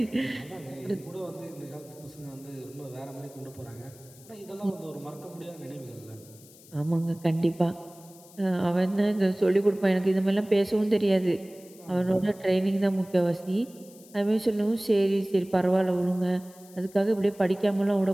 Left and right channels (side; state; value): left; noise; hiss, 23 dB below the sound